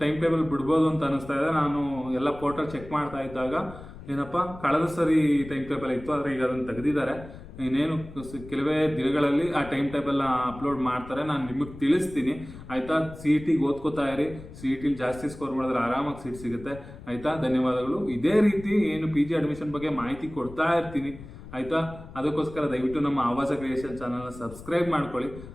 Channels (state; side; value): noise; left; rumble, 15 dB below the sound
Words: ಟೈಮ್ ಟೇಬಲ್ ಬಿಡ್ಬೋದು ಅಂತ ಅನ್ನಿಸ್ತಾ ಇದೆ. ನಾನು ಎಲ್ಲ ಪೋರ್ಟಲ್ ಚೆಕ್ ಮಾಡ್ತಾ ಇದ್ದಾಗ ಏನಪ್ಪ, ಕಳೆದ ಸರಿ ಟೈಮ್ ಟೇಬಲ್ ಇತ್ತು, ಆದರೆ ಈಗ ಅದನ್ನು ತೆಗೆದಿದ್ದಾರೆ. ಇನ್ನೇನು ಕೆಲವೇ ದಿನಗಳಲ್ಲಿ ಆ ಟೈಮ್ ಟೇಬಲ್ನ ಅಪ್ಲೋಡ್ ಮಾಡ್ತಾರೆ, ನಾನು ನಿಮಗೆ ತಿಳಿಸ್ತೀನಿ. ಆಯಿತಾ? CETಗೆ ಓದ್ಕೋತಾ ಇರಿ. CETಲಿ ಜಾಸ್ತಿ ಸ್ಕೋರ್ ಮಾಡಿದ್ರೆ ಆರಾಮಾಗಿ ಸೀಟ್ ಸಿಗುತ್ತೆ. ಆಯಿತಾ? ಧನ್ಯವಾದಗಳು. ಇದೇ ರೀತಿ ಏನು PG ಅಡ್ಮಿಷನ್ ಬಗ್ಗೆ ಮಾಹಿತಿ ಕೊಡ್ತಾ ಇರ್ತೀನಿ. ಆಯಿತಾ. ಅದಕ್ಕೋಸ್ಕರ ದಯವಿಟ್ಟು ನಮ್ಮ ಆವಾಸ ಕ್ರಿಯೇಷನ್ ಚಾನಲ್ನ ಸಬ್ಸ್ಕ್ರೈಬ್ ಮಾಡ್ಕೊಳ್ಳಿ.